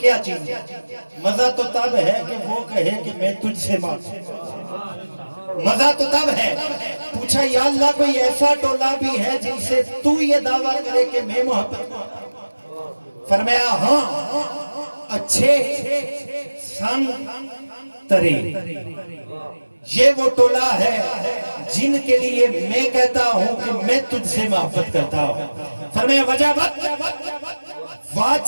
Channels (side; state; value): both; inverted; correlation -1.00